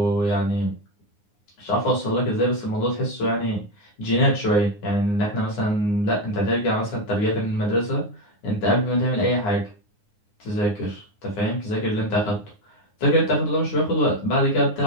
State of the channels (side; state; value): right; late; 9.7 ms